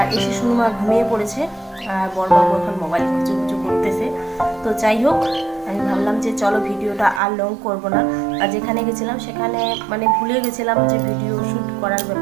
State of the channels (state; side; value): drops out; left; at 7.2 s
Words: এসে সুনুমা ঘুমিয়ে পড়েছে, আর বড়বাবু এখন মোবাইল খুঁজু করতেছে। তো যাই হোক, আমি ভাবলাম যে চলো ভিডিওটা আর লং করব না। আর যেখানে গেছিলাম সেখানে মানে ভুলে গেছিলাম যে ভিডিও শ্যুট করার